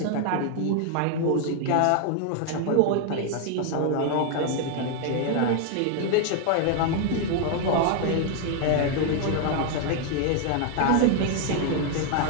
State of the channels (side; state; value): both; different; correlation 0.01